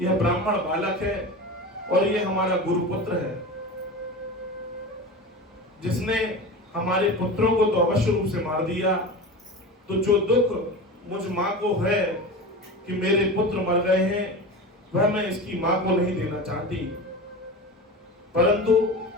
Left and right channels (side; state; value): both; normal; correlation 0.29